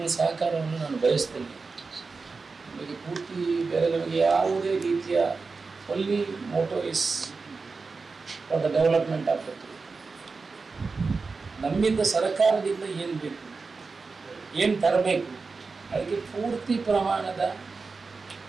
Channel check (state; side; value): quieter; left; 4.3 dB